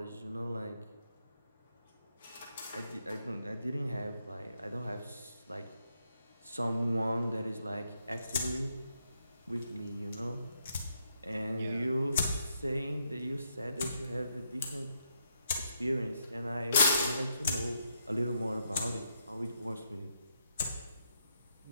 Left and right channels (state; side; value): inverted; both; correlation -0.78